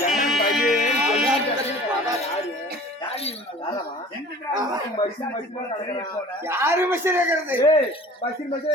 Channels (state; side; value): normal; both; correlation 0.45